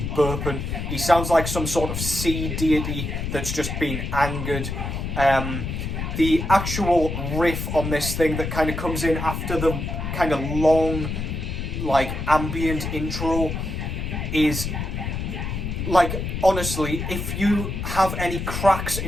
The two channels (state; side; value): noise; left; rumble, 4 dB below the sound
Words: He sounds like some sort of sea deity that's just been angered. The actual riff on this thing that kind of comes in after the kind of long, like, ambient intro is, like, honestly, if you have any cracks